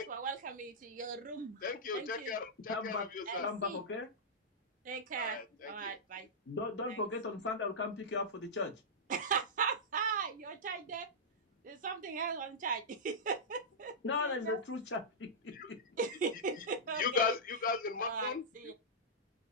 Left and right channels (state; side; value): normal; both; correlation -0.11